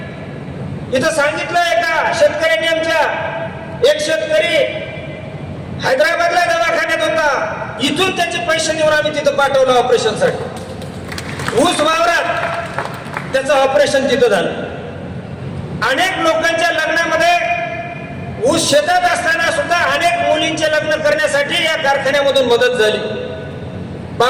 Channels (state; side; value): identical; both; correlation 1.00